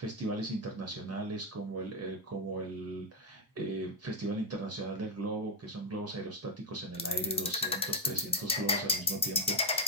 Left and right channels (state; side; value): normal; both; correlation 0.03